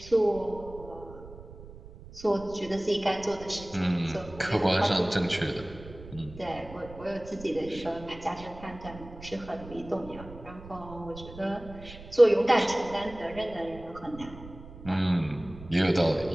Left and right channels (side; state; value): right; noise; rumble, 16 dB below the sound